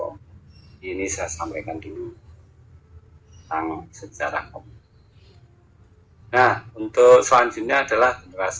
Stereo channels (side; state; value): both; identical; correlation 1.00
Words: Ini saya sampaikan dulu tentang sejarah komputer. Nah, untuk selanjutnya adalah